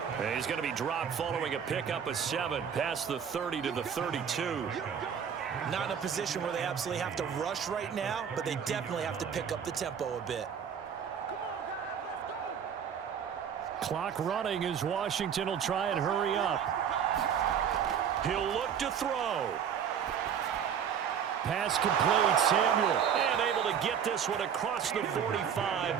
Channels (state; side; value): quieter; left; 7.9 dB